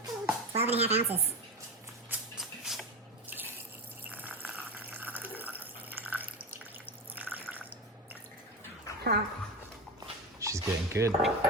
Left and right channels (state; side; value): normal; both; correlation 0.21